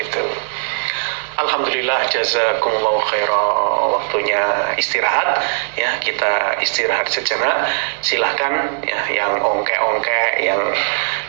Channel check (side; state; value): left; silent; digital silence